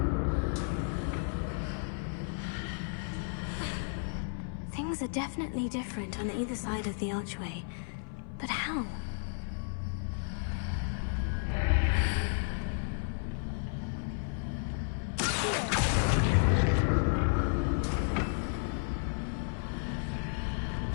Things are definitely different on either side of the archway. But how?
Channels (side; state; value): right; silent; 56 dB below the other